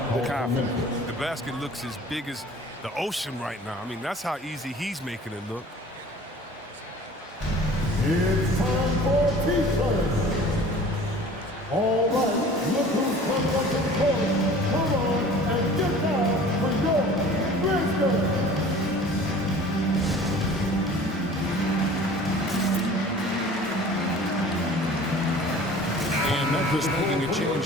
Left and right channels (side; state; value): both; normal; correlation 0.45